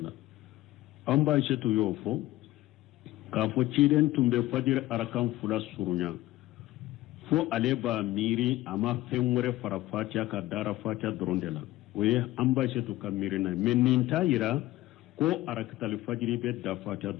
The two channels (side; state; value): right; quieter; 16.6 dB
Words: amba cetu yofo ka fo ciden tumbe fajir arakan fula surunya fo ale ba miri ama fenwore fara fatiha ka dara fatiha doronde la oye amba cetu ka miri na meninta yira ko arakatul fajri be da fatiha